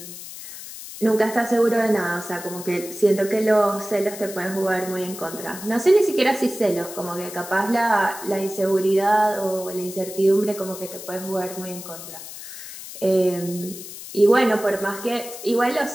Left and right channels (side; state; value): left; noise; hiss, 12 dB below the sound